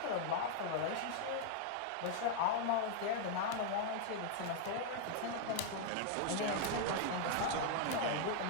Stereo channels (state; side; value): different; both; correlation 0.00